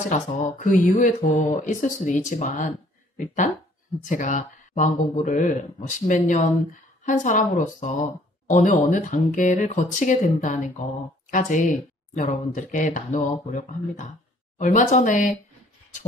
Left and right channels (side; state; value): both; normal; correlation 0.59